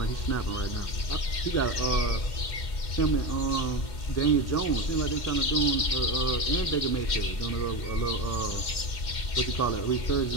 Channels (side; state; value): right; late; 2.1 ms